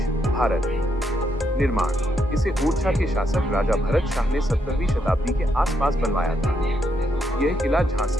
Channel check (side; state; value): both; normal; correlation 0.78